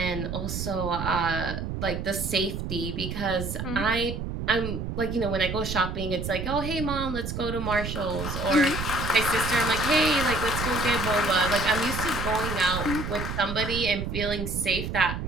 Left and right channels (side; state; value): right; noise; rumble, 5 dB below the sound